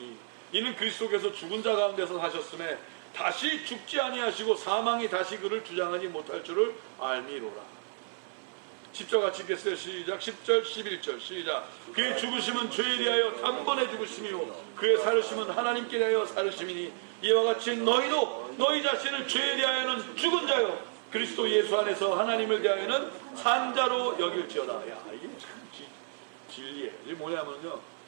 이는 그리스도께서 죽은 자 가운데서 사셨음에 다시 죽지 아니하시고 사망이 다시 그를 주장하지 못할 줄을 알미로라. 10절 같이 읽겠어요. 시작. 10절 11절 시작. 그의 죽으심은 죄에 대하여 단번에 죽으심이요 그의 살으심은 하나님께 대하여 살으심이니 이와 같이 너희도 너희 자신을 죄에 대하여는 죽은 자요 그리스도 예수 안에서 하나님을 대하여는 산 자로 여길지어다. 야, 이게 참 진리예요. 이게 뭐냐면요,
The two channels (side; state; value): left; silent; 57 dB below the other